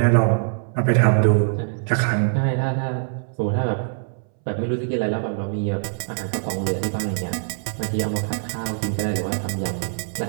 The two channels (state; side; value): silent; left; 63 dB below the other